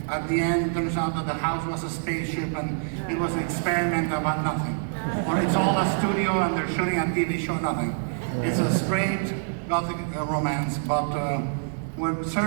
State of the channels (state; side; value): silent; left; digital silence